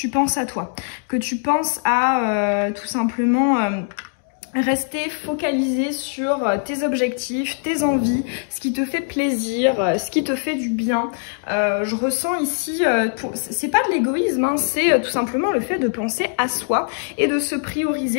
penses à toi. Que tu penses à tout simplement... rester focalisé sur tes objectifs, tes envies, ce qui te fait plaisir, ce qui te fait du bien. Je ressens ici, c'est pas de l'égoïsme, c'est tout simplement le fait de penser à soi et de se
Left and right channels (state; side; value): silent; right; digital silence